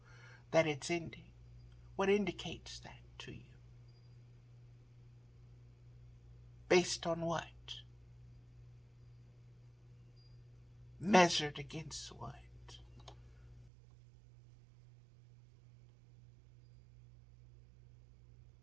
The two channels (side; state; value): left; drops out; at 13.7 s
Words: that it's ending? What indicates that to you? Based on what? Measured against what?